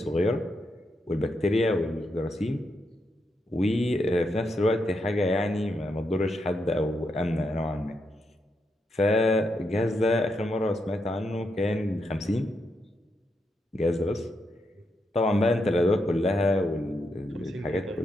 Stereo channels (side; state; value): both; normal; correlation 0.82